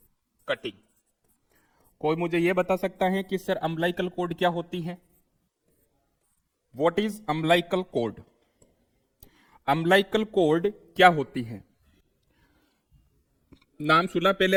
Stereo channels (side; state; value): both; identical; correlation 1.00